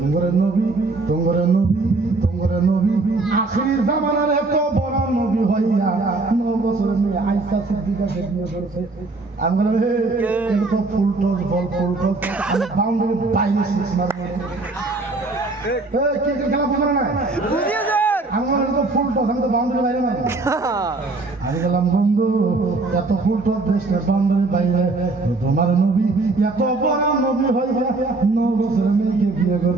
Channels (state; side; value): quieter; left; 3.4 dB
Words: নবী আখির জামানার এত বড় নবী হইয়া 9 বছরের মেয়ে আয়েশা সিদ্দিকা বিয়ে করেছে। আমি বললাম এটা তো ফুলটস বল ফুলটস আমি বাউন্ডারি বাইরে সিক্স মারবো ক্রিকেট খেলা বুঝলো না আমি বললাম তো ফুলটস আমি তো বাউন্ডারি বাইরে মারবো আমি বললাম বন্ধু এত ফুলটস দেশের বাউন্ডারি বাইরে তোমার নবী এত বড় নবী হইয়া 9 বছরের মেয়েকে বিয়ে